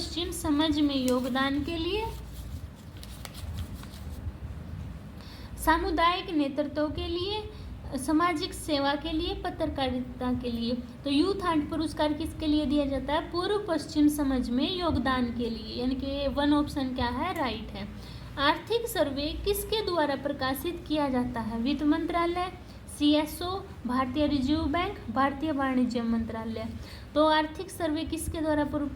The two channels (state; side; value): identical; both; correlation 1.00